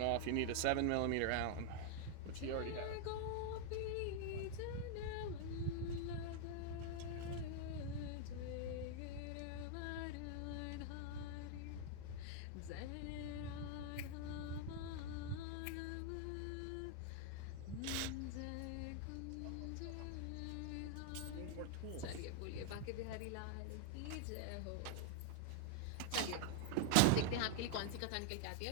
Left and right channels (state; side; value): different; both; correlation 0.00